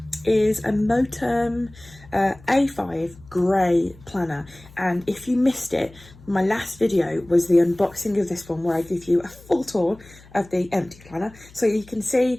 is a Moterm A5 grey planner, and if you missed it, my last video was the unboxing of this one where I give you a full tour of the empty planner, so you can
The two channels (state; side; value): noise; left; hum, 23 dB below the sound